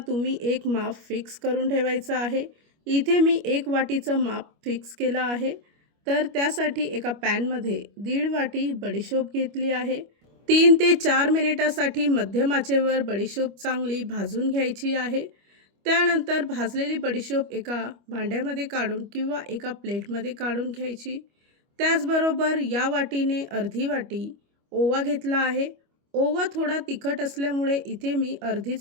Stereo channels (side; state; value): left; late; 25 ms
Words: तुम्ही एक माप फिक्स करून ठेवायचं आहे. इथे मी 1 वाटीचं माप फिक्स केलं आहे. तर त्यासाठी एका पॅनमध्ये 1.5 वाटी बडीशोप घेतली आहे. 3 ते 4 मिनिटासाठी मध्यम आचेवर बडीशोप चांगली भाजून घ्यायची आहे. त्यानंतर भाजलेली बडीशोप एका भांड्यामध्ये काढून किंवा एका प्लेटमध्ये काढून घ्यायची. त्याचबरोबर या वाटीने अर्धी वाटी ओवा घेतला आहे. ओवा थोडा तिखट असल्यामुळे इथे मी